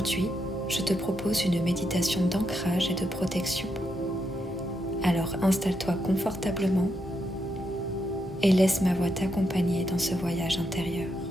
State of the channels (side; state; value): both; normal; correlation 0.81